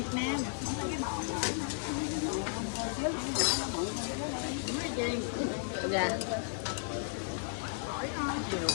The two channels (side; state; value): right; silent; 55 dB below the other